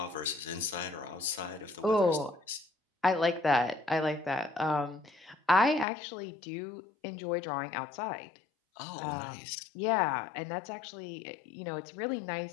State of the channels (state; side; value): drops out; right; at 5.9 s